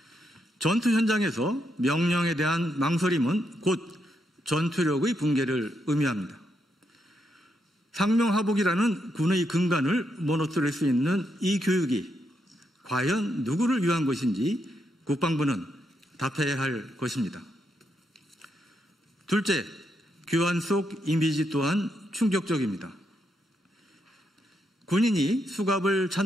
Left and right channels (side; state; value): both; normal; correlation 0.80